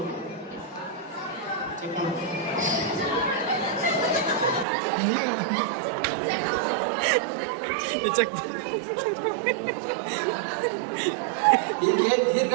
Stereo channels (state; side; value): drops out; left; at 4.7 s